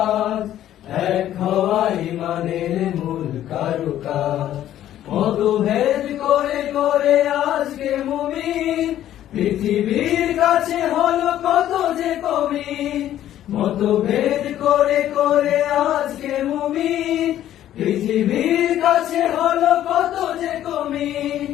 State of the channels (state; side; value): quieter; right; 12.1 dB